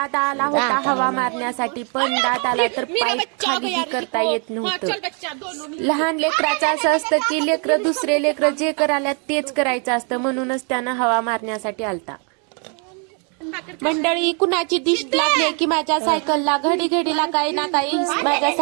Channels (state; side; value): quieter; left; 38.0 dB